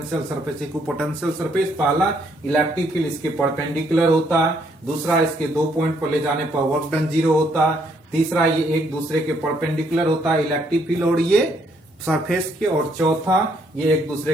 सरफेस। इक्विपोटेंशियल सरफेस पहला इलेक्ट्रिक फील्ड इसके परपेंडिकुलर होता है, दूसरा इसके 2 पॉइंट पर ले जाने पर वर्क डन 0 होता है, तीसरा ये एक दूसरे के परपेंडिकुलर होता है इलेक्ट्रिक फील्ड और ये सरफेस के, और चौथा ये एक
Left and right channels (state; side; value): normal; both; correlation 0.70